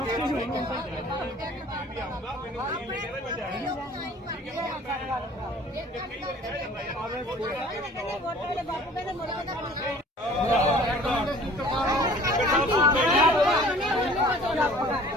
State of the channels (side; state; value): both; normal; correlation 0.49